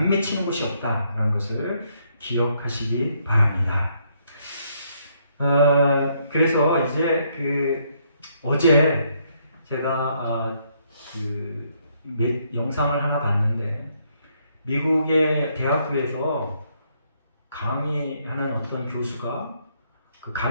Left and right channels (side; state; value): both; inverted; correlation -0.72